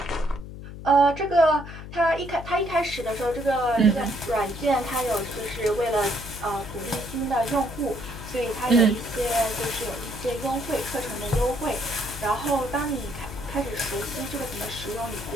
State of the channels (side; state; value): left; noise; hum, 11 dB below the sound